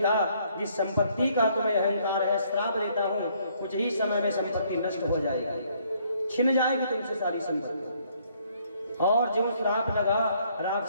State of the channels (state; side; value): inverted; both; correlation -0.66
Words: जिस संपत्ति का तुम्हें अहंकार है, श्राप देता हूं, कुछ ही समय में संपत्ति नष्ट हो जाएगी, छिन जाएगी तुमसे सारी संपत्ति। और जो श्राप लगा,